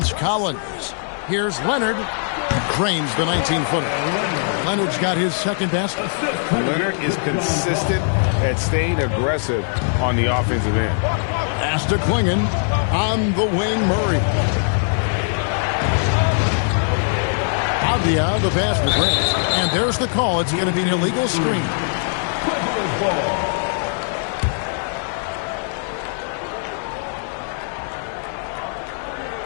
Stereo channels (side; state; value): right; silent; digital silence